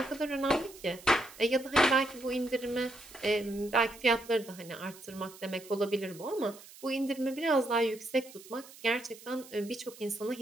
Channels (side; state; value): right; noise; hiss, 19 dB below the sound